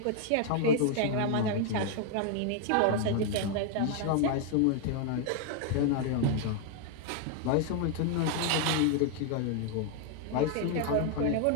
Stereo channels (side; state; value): both; different; correlation 0.00